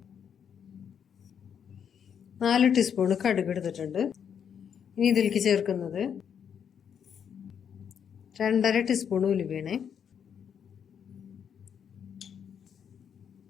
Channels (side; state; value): right; quieter; 7.9 dB